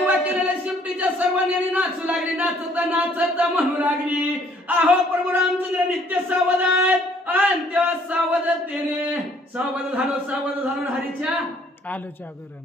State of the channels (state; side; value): normal; both; correlation 0.61